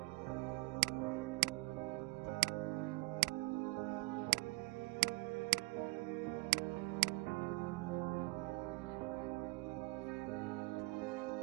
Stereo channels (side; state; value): left; quieter; 22.9 dB